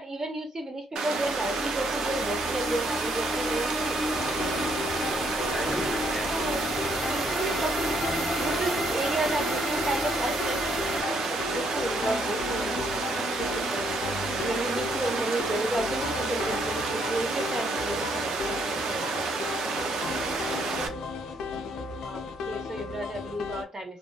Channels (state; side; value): normal; both; correlation 0.71